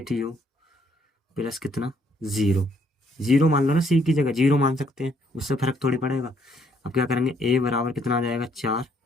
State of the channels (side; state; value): both; normal; correlation 0.68